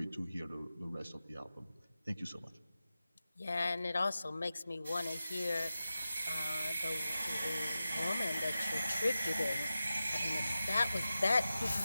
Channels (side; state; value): both; inverted; correlation -0.93